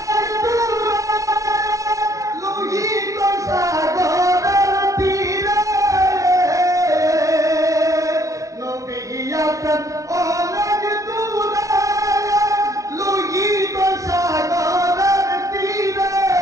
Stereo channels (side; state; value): left; late; 0.16 ms